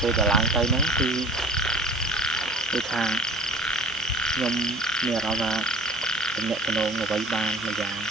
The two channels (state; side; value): normal; both; correlation 0.44